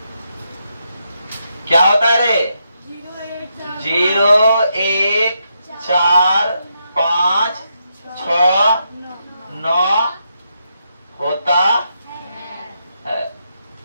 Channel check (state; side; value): inverted; both; correlation -0.82